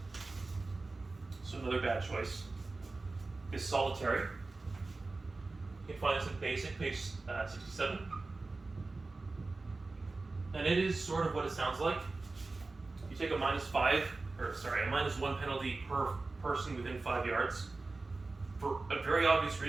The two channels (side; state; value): left; quieter; 3.5 dB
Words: So another bad choice is Solitary. You can find this in Basic, page 67. And it is sort of what it sounds like. You take a minus 1 penalty per person within 5 yards. For very obvious